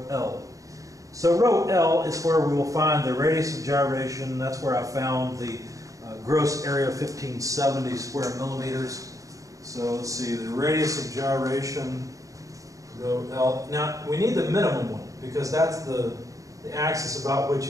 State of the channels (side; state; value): left; late; 0.16 ms